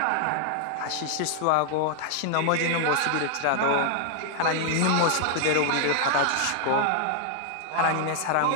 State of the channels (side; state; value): both; different; correlation 0.00